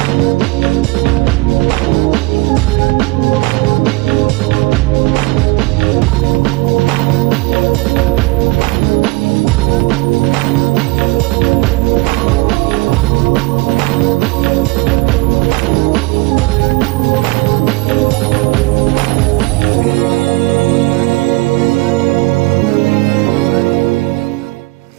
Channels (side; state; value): left; quieter; 23.1 dB